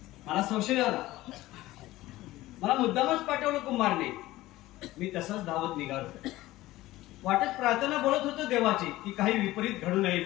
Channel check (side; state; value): right; quieter; 17.1 dB